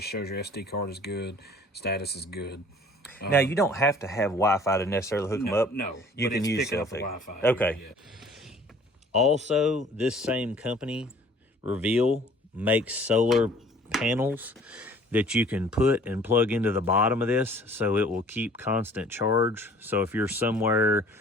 shows your SD card is good, status is good. Now, you don't have to have Wi-Fi to necessarily hook them up. No, you can use cell phone. Wi-Fi. Okay. Yeah. Also, this same company, Reveal, makes solar panels that you can put and plug into the bottom of this, so it will keep constant charge. So if you're somewhere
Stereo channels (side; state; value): both; normal; correlation 0.52